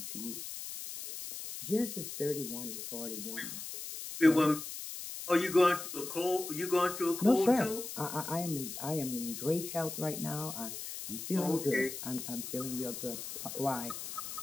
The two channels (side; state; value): left; noise; hiss, 8 dB below the sound